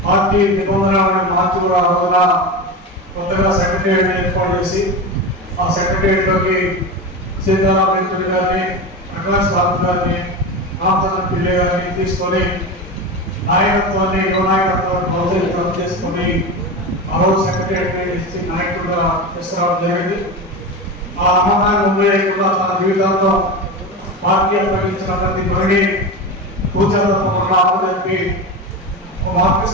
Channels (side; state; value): both; normal; correlation 0.23